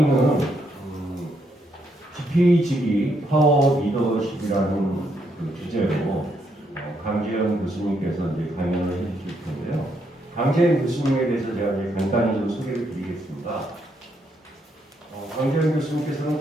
GPGB 파워 리더십이라는 그 주제로 강재현 교수님께서 이제 강연을 해주실 텐데요. 강재현 교수님에 대해서 제가 이제 간단히 좀 소개를 드리겠습니다. 강재현 교수님께서는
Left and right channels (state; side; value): normal; both; correlation 0.76